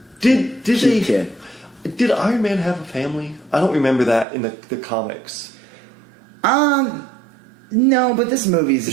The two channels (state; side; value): drops out; left; at 4.2 s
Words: Did cute kid. Did Iron Man have a family? I don't remember that in the comics. No, but this movie's a